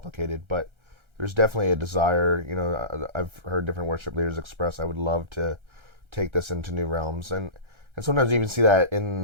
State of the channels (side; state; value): left; late; 1.3 ms